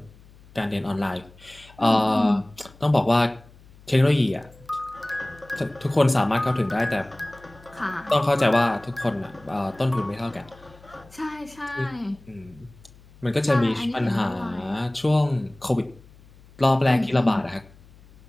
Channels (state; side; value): noise; left; hum, 25 dB below the sound